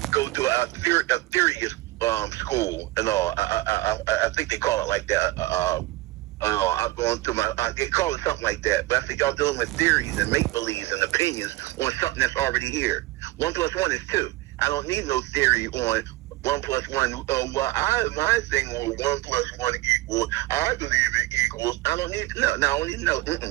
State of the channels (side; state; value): left; quieter; 18.4 dB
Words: go to a serious school and all. I think they call it like that. I'm going through they call it something like that. But I think y'all dealing with theories and make believes and opinions on something that's already here. 1 + 1 is 2. I don't need no theory on 1 + 1. My thing on 1 + 1 equals. I believe it equals. I don't need no. I don't need no.